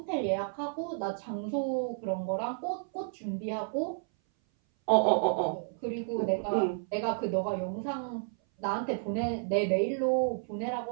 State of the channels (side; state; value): left; silent; 57 dB below the other